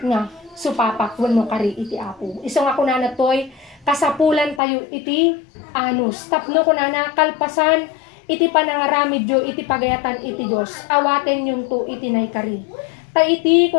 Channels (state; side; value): drops out; right; at 4.6 s